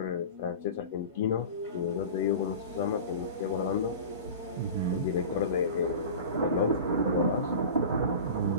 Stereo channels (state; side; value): inverted; both; correlation -0.34